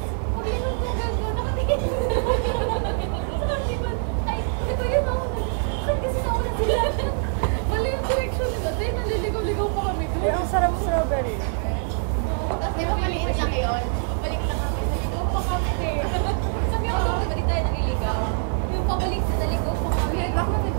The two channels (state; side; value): silent; left; 62 dB below the other